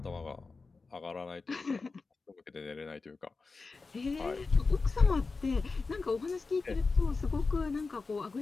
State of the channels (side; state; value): right; quieter; 4.1 dB